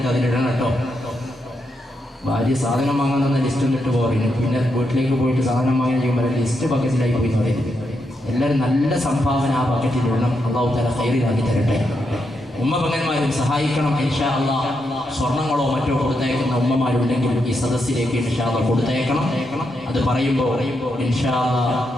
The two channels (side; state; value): both; normal; correlation 0.82